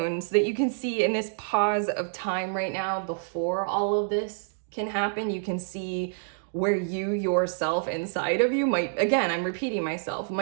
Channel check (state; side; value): silent; left; digital silence